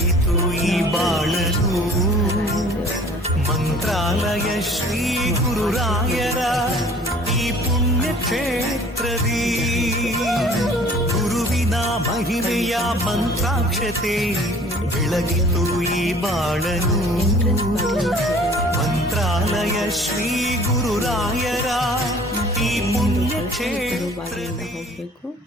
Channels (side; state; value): both; normal; correlation 0.51